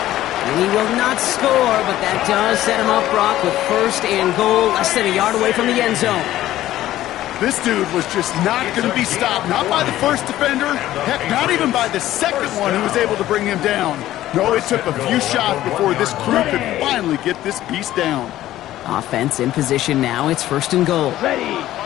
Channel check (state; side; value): quieter; right; 14.1 dB